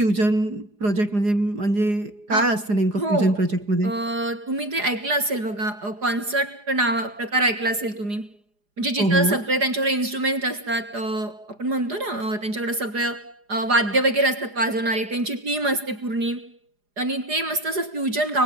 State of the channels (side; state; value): left; late; 4.9 ms